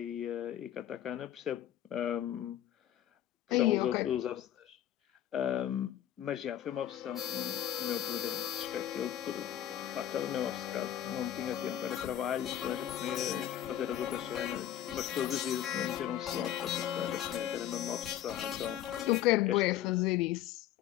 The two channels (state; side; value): quieter; right; 11.5 dB